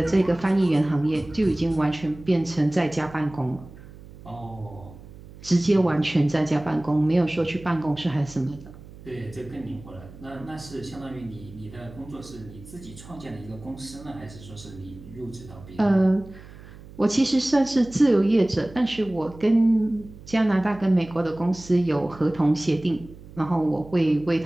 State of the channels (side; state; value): right; noise; hum, 18 dB below the sound